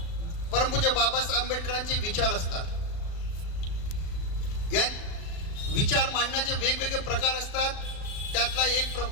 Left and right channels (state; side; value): late; right; 36 ms